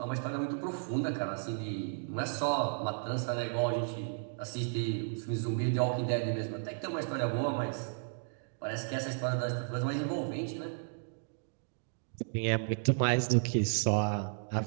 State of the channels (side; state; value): left; silent; digital silence